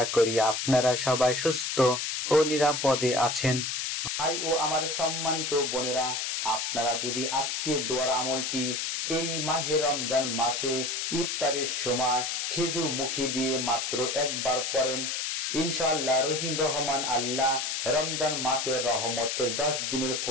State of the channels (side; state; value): left; noise; hiss, 1 dB below the sound